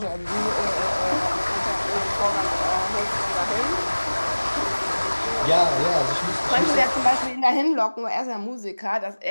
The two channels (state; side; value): inverted; both; correlation -1.00